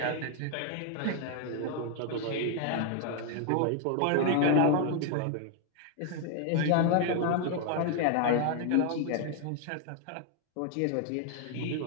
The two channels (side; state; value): both; different; correlation 0.00